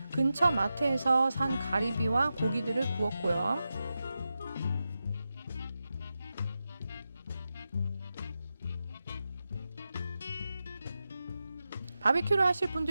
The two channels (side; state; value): both; inverted; correlation -0.91